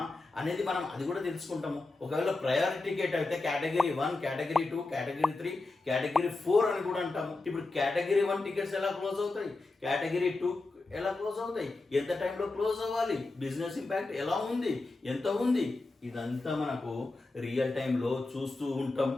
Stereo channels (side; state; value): right; quieter; 3.3 dB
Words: అనేది మనం అది కూడా తెలుసుకుంటాము. ఒకవేళ ప్రయారిటీ టికెట్ అయితే కేటగిరీ 1, కేటగిరీ 2, కేటగిరీ 3, కేటగిరీ 4 అని కూడా అంటాము. ఇప్పుడు కేటగిరీ 1 టికెట్స్ ఎలా క్లోజ్ అవుతాయి, కేటగిరీ 2 ఎలా క్లోజ్ అవుతాయి, ఎంత టైంలో క్లోజ్ అవ్వాలి, బిజినెస్ ఇంపాక్ట్ ఎలా ఉంది, ఎంత ఉంది, ఇదంతా మనకు రియల్ టైంలో చూస్తూ ఉంటాం,